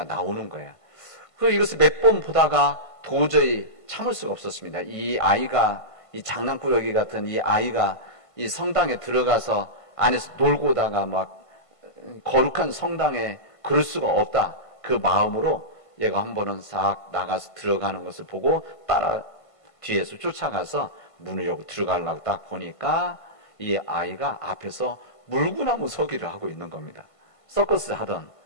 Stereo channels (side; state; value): right; late; 1.5 ms